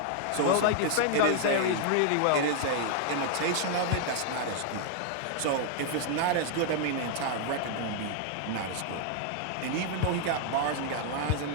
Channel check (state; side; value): different; both; correlation -0.01